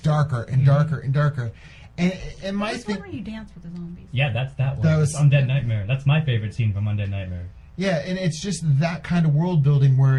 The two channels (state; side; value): identical; both; correlation 1.00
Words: and darker and darker. And my thing, where you dance with the zombies. Yeah, that's that one. That was Undead Nightmare. That's my favorite scene from Undead Nightmare. Yeah, and it's just that kind of world building where